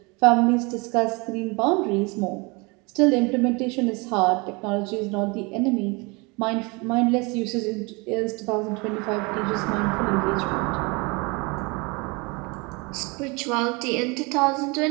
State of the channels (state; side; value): quieter; left; 27.9 dB